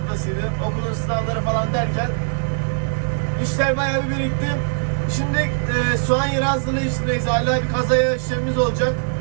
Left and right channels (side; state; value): left; silent; digital silence